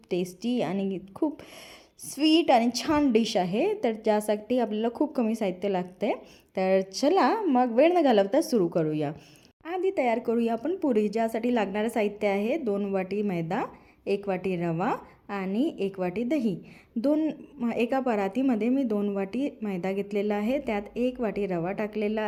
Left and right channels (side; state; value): both; identical; correlation 1.00